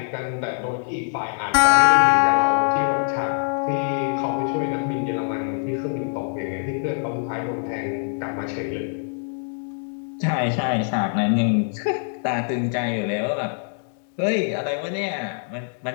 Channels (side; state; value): right; silent; digital silence